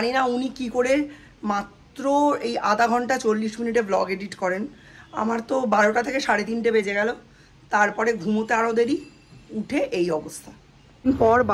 না উনি কি করে মাত্র এই আধা ঘন্টা 40 মিনিটে ব্লগ এডিট করেন। আমার তো 12টা থেকে 3:30 বেজে গেল। তারপরে ঘুমোতে আরও দেরি, উঠে এই অবস্থা। পর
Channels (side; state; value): both; identical; correlation 1.00